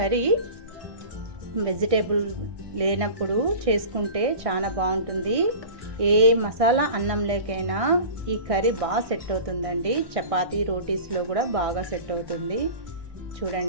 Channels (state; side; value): late; left; 1.6 ms